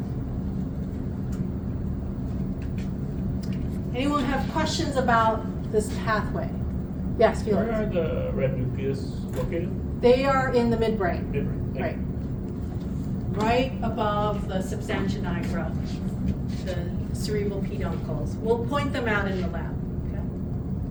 Anyone have questions about this pathway? Yes, Felix. Where are the red nucleus located? They are in the midbrain, Midbrain. Thank right? you. Right above the substantia nigra, the cerebral peduncles. We'll point them out in the lab. Okay.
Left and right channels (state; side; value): identical; both; correlation 1.00